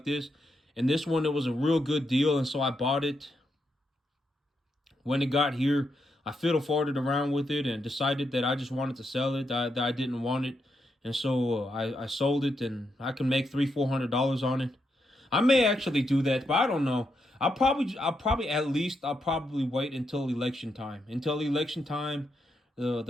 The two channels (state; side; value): normal; both; correlation 0.82